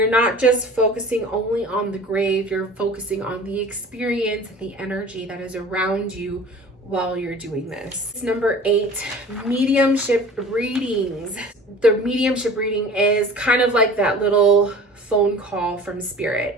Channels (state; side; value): normal; both; correlation 0.43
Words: not just focusing only on the grave, you're focusing on the experience and the energy that is around you while you're doing this. Number 8, mediumship readings. The mediumship reading is kind of like that little phone call from spirit.